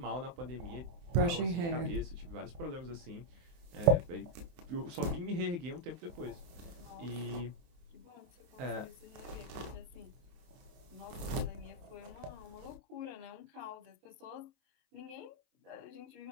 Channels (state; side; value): late; left; 24 ms